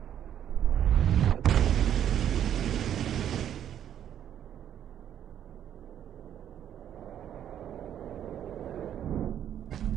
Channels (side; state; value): left; quieter; 10.1 dB